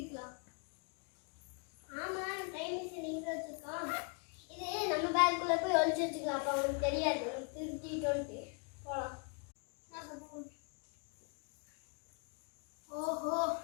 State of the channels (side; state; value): right; quieter; 38.3 dB